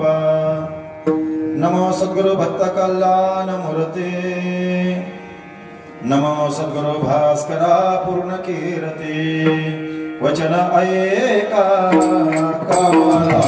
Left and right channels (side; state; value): both; identical; correlation 1.00